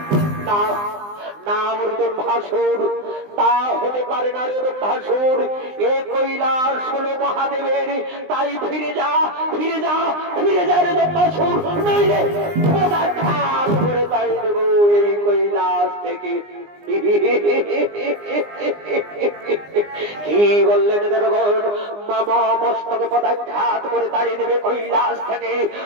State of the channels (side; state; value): left; late; 19 ms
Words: নাম রোদন ভাসুর, তা হতে পারে না রোদন ভাসুর। এ কৈলাস হলো মহাদেবের, তাই ফিরে যা ফিরে যা ফিরে যা রোদন ভাসুর, নইলে খান করে তাই দেব এই কৈলাস থেকে। কি বললেন দেবগণ? মামা মস্তকে পদাঘাত করে তাড়িয়ে দেবে কৈলাস থেকে।